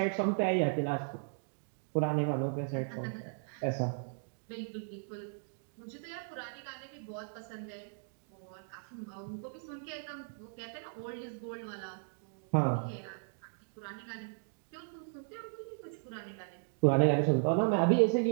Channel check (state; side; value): silent; left; digital silence